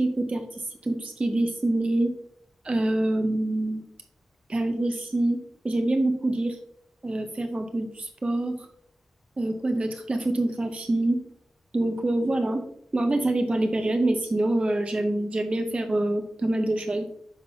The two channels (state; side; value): normal; both; correlation 0.97